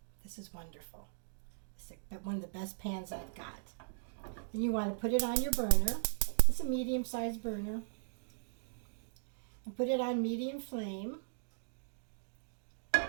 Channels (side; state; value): left; silent; digital silence